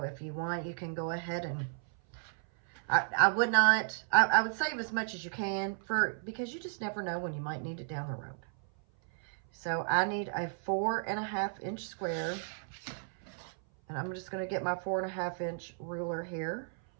if you want, you can go ahead and I would not, I would save as much as you can because you just never know when you might need it down the road. So I need a 4.5-inch square, and I'm just going to get my 4.5-inch ruler here.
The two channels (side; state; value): left; silent; 55 dB below the other